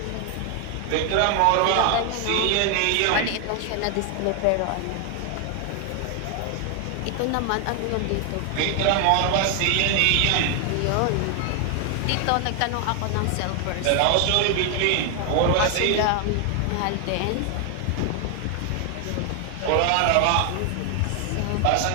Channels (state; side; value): different; both; correlation 0.00